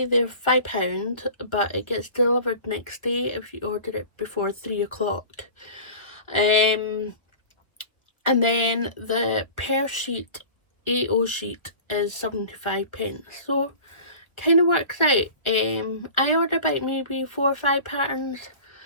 they're £5, but it gets delivered next day if you order it before 3 o'clock. And then the per sheet A0 sheet is 75p, so kind of works out. I order about maybe 4 or 5 patterns,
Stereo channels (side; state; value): right; late; 1.1 ms